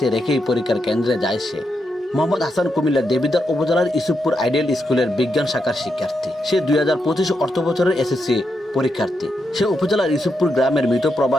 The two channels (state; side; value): normal; both; correlation 0.83